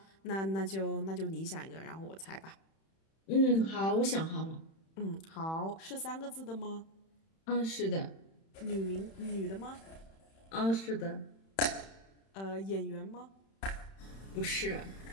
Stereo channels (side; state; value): right; late; 31 ms